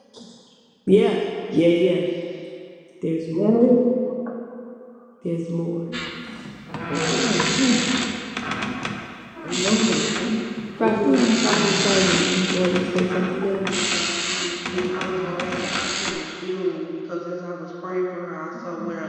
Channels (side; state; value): both; identical; correlation 1.00